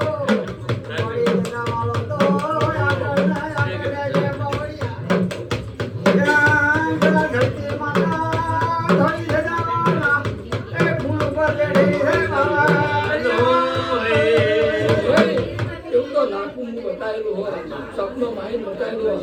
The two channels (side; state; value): both; identical; correlation 1.00